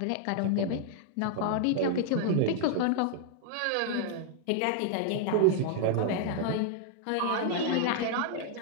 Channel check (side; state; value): both; different; correlation 0.00